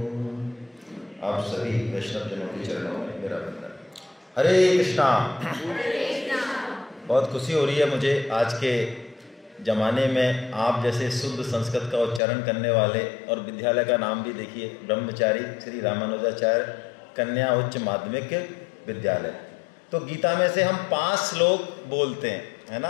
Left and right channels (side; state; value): right; drops out; at 12.2 s